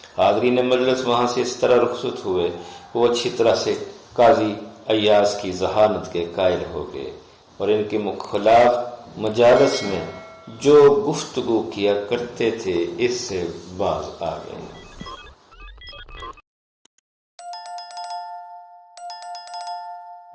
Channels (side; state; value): both; identical; correlation 1.00